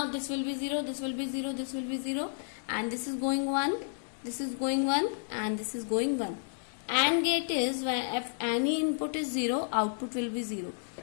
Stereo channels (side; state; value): right; silent; digital silence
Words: this will be 0, this will be 0, this will be 0, and this is going 1, this is going 1, and this is going 1. AND gate is when if any input is 0, output will be 0.